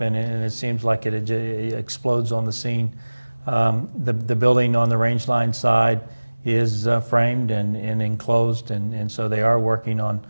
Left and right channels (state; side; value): inverted; both; correlation -1.00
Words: and it seems like it explodes on the scene. The building on the Range Line side is framed and enclosed, and so they are working on